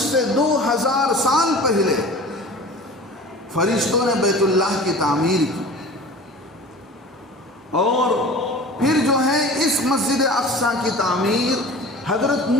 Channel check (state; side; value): normal; both; correlation 0.39